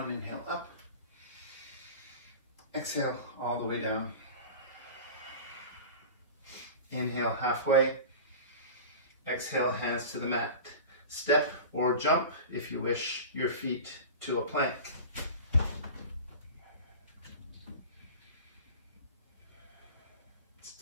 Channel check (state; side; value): inverted; both; correlation -0.34